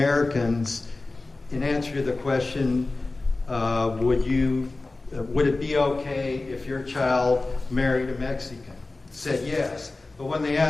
in answer to the question, would it be okay if your child married a Mexican, said yes. But when they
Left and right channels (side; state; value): right; quieter; 3.3 dB